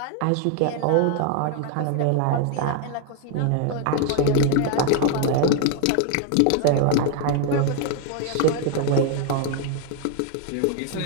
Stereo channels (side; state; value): both; different; correlation 0.00